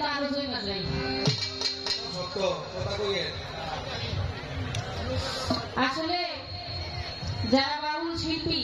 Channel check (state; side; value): identical; both; correlation 1.00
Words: তো আরো জমে যায়। আসলে যারা বাউল শিল্পী